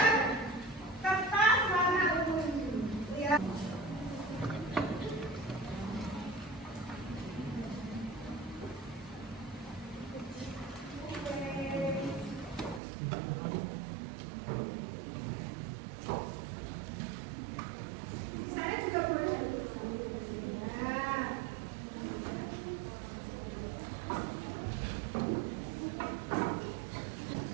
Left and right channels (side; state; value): left; drops out; at 12.8 s